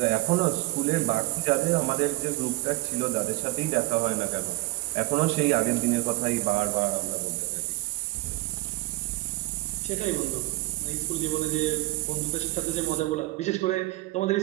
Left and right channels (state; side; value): quieter; left; 20.5 dB